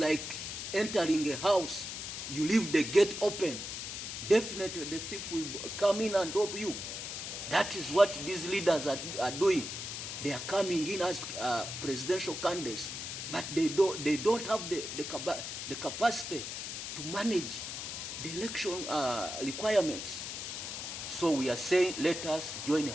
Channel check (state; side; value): noise; left; hiss, 6 dB below the sound